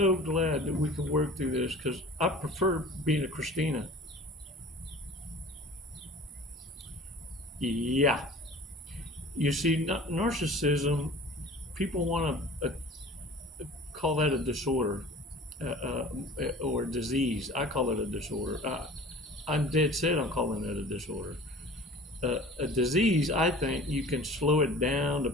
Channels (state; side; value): normal; both; correlation 0.43